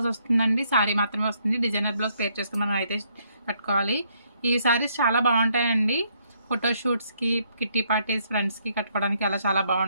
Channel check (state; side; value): inverted; both; correlation -0.71